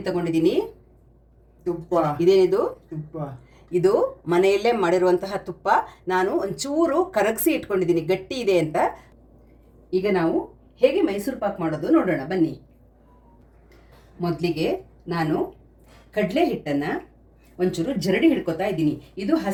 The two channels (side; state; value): both; identical; correlation 1.00